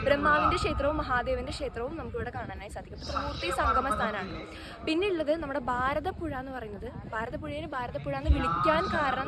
ബ്രഹ്മാവിന്റെ ക്ഷേത്രവും മഹാദേവന്റെ ക്ഷേത്രവും നമുക്ക് ഇവിടെ കാണാനായി സാധിക്കും. ത്രിമൂർത്തി സംഗമ സ്ഥാനമാണ്. പിന്നെ ഉള്ളത് നമ്മുടെ ഭാരതപ്പുഴ എന്ന് പറയുന്നത്. ഭാരതപ്പുഴയെ ഭാരതപ്പുഴ എന്ന് വിളിക്കാൻ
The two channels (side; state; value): both; identical; correlation 1.00